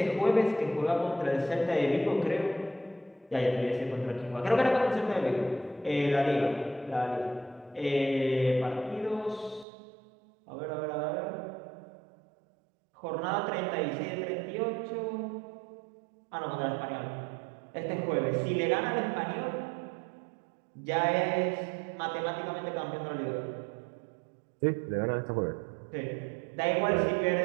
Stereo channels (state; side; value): drops out; left; at 9.7 s